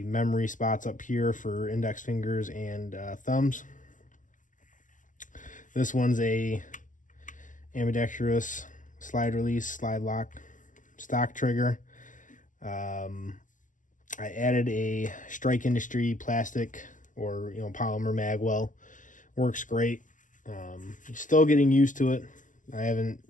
memory spots up here for index fingers and thumbs. This one's a ambidextrous slide release, slide lock, stock trigger. I added a Strike Industry plastic or polymer magwell. Works great. Still getting used to it. I haven't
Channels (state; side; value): late; right; 0.37 ms